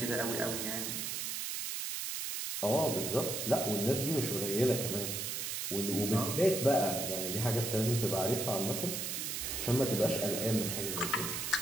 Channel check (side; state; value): right; noise; hiss, 3 dB below the sound